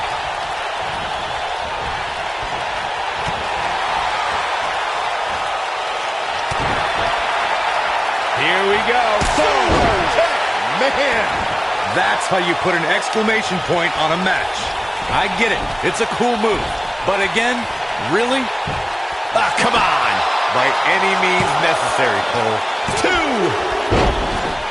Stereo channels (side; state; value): both; identical; correlation 1.00